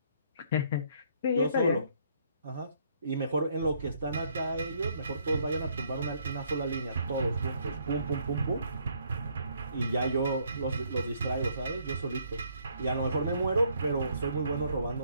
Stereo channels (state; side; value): inverted; both; correlation -0.67